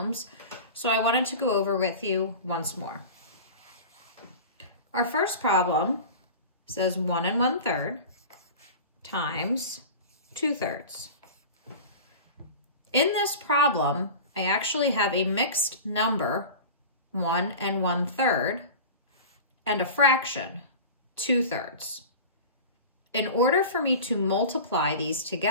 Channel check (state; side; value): inverted; both; correlation -0.34